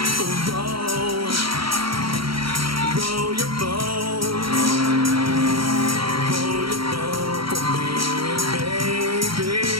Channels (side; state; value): left; late; 0.74 ms